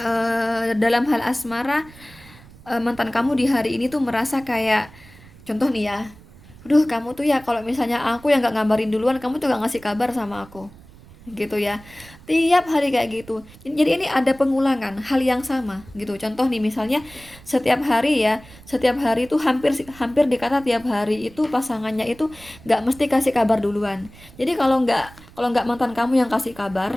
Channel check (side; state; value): right; noise; rumble, 22 dB below the sound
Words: dalam hal asmara, mantan kamu di hari ini tuh merasa kayak, contoh nih ya, aduh kamu tuh ya kalau misalnya aku yang nggak ngabarin duluan, kamu tuh nggak ngasih kabar sama aku, gitu ya. Tiap hari kayak gitu. Jadi ini ada pengulangan hal yang sama gitu. Contoh nih misalnya setiap hari ya, setiap hari itu hampir hampir dikata tiap hari itu pasangannya itu nggak mesti kasih kabar duluan. Jadi kalau nggak mantan kamu yang kasih